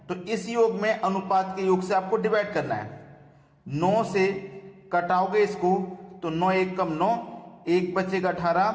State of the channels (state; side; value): identical; both; correlation 1.00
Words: तो इस योग में अनुपात के योग से आपको डिवाइड करना है। 9 से कटाओगे इसको तो 9 1 कम 9, 1 बचेगा 18,